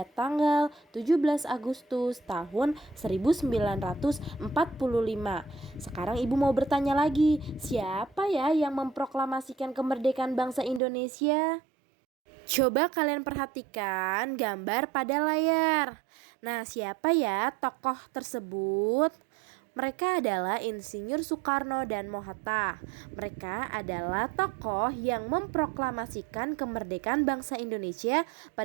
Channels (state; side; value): drops out; left; at 10.8 s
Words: tanggal 17 Agustus tahun 1945. Sekarang Ibu mau bertanya lagi, siapa ya yang memproklamasikan kemerdekaan bangsa Indonesia? Coba kalian perhatikan gambar pada layar. Nah, siapa ya tokoh tersebut? Mereka adalah Insinyur Soekarno dan Mohatta. Mereka adalah tokoh yang memproklamasikan kemerdekaan bangsa Indonesia